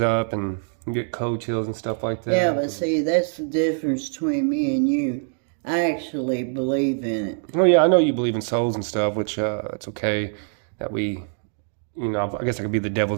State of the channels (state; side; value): silent; left; 56 dB below the other